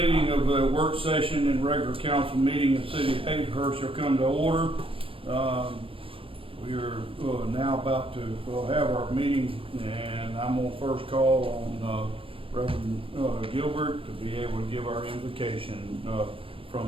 of the work session and regular council meeting in the city of Hazelhurst shall come to order. We are now about to have our meeting, and I'm going to first call on Reverend Gilbert to be able to give our invocation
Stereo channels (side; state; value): left; late; 0.26 ms